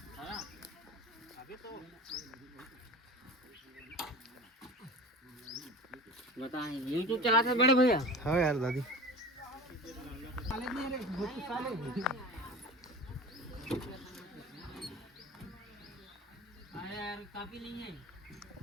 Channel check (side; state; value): both; normal; correlation 0.35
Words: बताएं YouTube चलाते हैं बड़े भैया? हाँ यार दादी। यार काफी नहीं है,